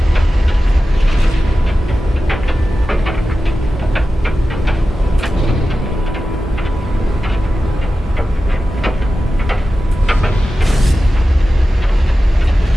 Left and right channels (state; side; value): normal; both; correlation 0.94